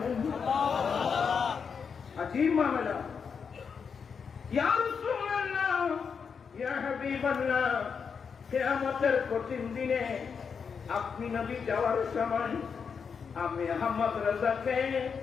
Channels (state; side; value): quieter; right; 6.2 dB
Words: আজীব মামলা। ইয়া রাসূলুল্লাহ ইয়া হাবিবাল্লাহ কিয়ামতের কঠিন দিনে আপনি নবী যাওয়ার সময় আমি আহমদ রেজাকে